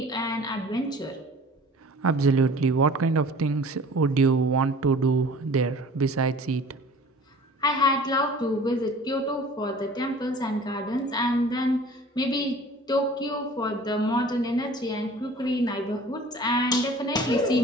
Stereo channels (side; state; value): both; normal; correlation 0.46